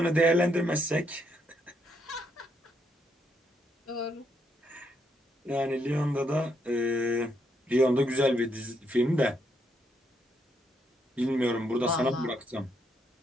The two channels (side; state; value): both; normal; correlation 0.76